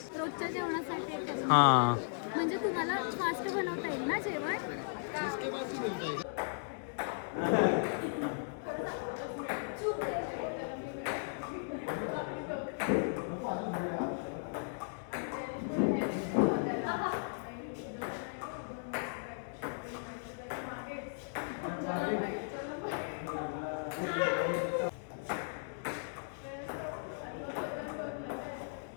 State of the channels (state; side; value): silent; right; digital silence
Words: रोजच्या जेवणासाठी करून. हां, म्हणजे तुम्हाला फास्ट बनवता येईल ना जेवण.